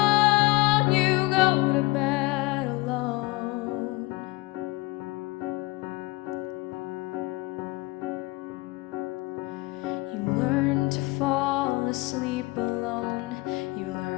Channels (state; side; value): quieter; right; 22.4 dB